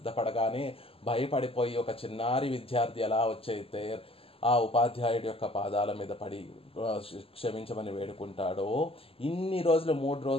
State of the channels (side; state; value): right; late; 0.27 ms